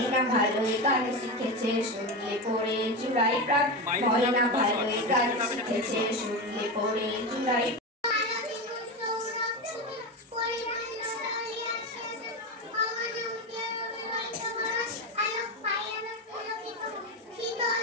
ভালোই গান শিখেছে শুনলে পড়ে জুড়াই প্রাণ, ময়না ভালোই গান শিখেছে শুনলে পড়ে জুড়াই।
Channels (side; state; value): both; normal; correlation 0.18